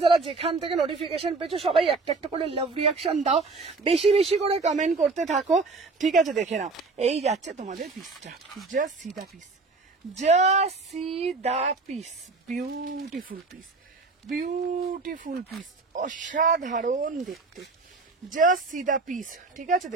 যারা যেখান থেকে নোটিফিকেশন পেয়েছো সবাই একটা একটা করে লাভ রিয়াকশন দাও, বেশি বেশি করে কমেন্ট করতে থাকো, ঠিক আছে? দেখে নাও এই যাচ্ছে তোমাদের পিসটা, just see the piece, just see the piece, beautiful piece, beautiful piece, অসাধারণ দেখতে, জাস্ট সি দা পিস, ঠিক আছে?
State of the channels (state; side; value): quieter; left; 3.9 dB